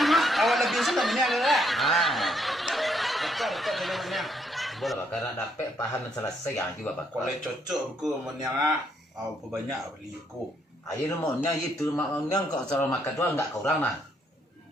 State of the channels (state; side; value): normal; both; correlation 0.72